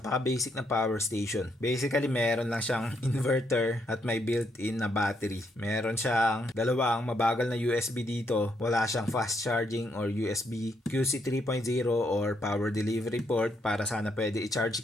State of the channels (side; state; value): both; normal; correlation 0.76